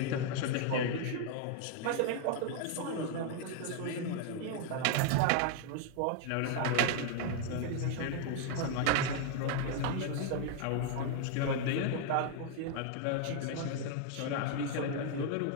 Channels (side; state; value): both; different; correlation 0.00